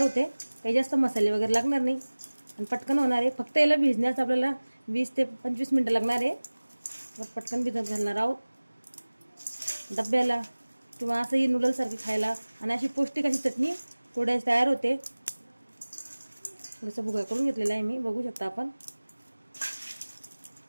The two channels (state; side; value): inverted; both; correlation -1.00